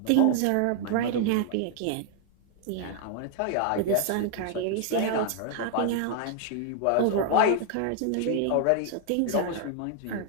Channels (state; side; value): different; both; correlation 0.00